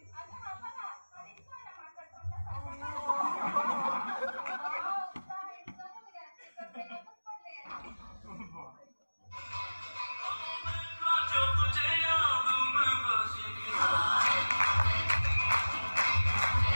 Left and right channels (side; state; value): both; inverted; correlation -1.00